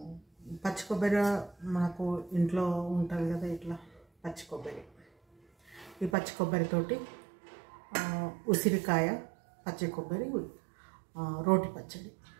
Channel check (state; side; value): drops out; left; at 6.2 s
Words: పచ్చి కొబ్బరి మనకు ఇంట్లో ఉంటుంది కదా, ఇట్లా పచ్చి కొబ్బరి. ఈ పచ్చి కొబ్బరితోటి ఉసిరికాయ పచ్చి కొబ్బరి రోటి పచ్చడి